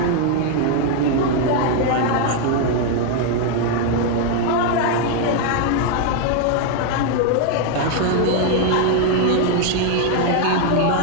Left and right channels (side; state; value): both; different; correlation 0.00